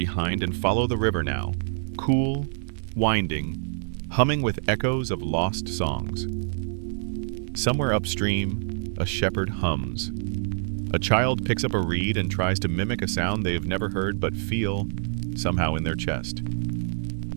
and follow the river now, cool, winding, humming with echoes of lost songs. Somewhere upstream, a shepherd hums. A child picks up a reed and tries to mimic a sound they have never heard but feel somehow in their chest.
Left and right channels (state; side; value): silent; left; digital silence